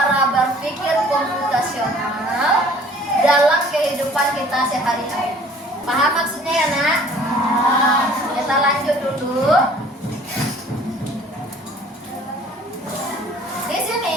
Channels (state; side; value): normal; both; correlation 0.52